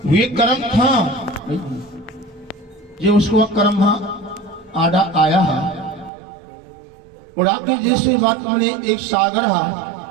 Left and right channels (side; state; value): left; drops out; at 6.1 s